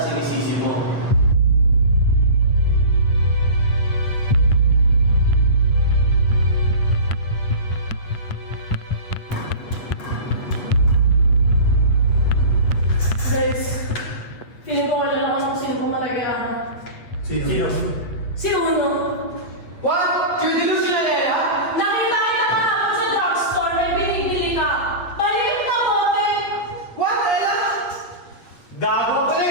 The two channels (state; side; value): late; right; 8.4 ms